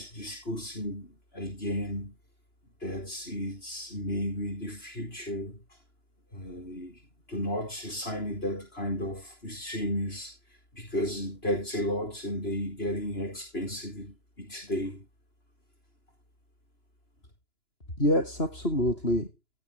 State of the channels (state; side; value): late; right; 2.9 ms